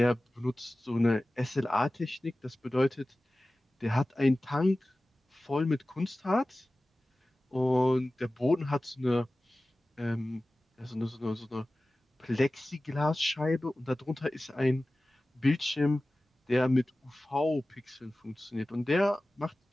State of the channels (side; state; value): both; normal; correlation 0.96